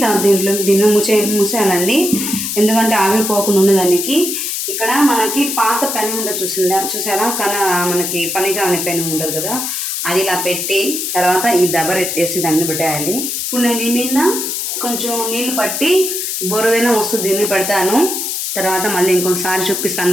దీన్ని మూసేయాలండి, ఎందుకంటే ఆవిరిపోకుండా ఉండదానికి. ఇక్కడ మనకి పాత పెనం ఉండదు, చూసారా, మనకి పనిగా అనే పెనం ఉండదు కదా, అది ఇలా పెట్టి తర్వాత ఈ దబర్ ఎత్తేసి దాన్ని పెట్టేయాలి. ఇప్పుడు నేను ఈ మీద కొంచెం నీళ్ళు పట్టి బొరుదైనా వస్తుంది దీన్ని పెడతాను, తర్వాత మళ్ళీ ఇంకొకసారి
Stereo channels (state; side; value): noise; left; hiss, 3 dB below the sound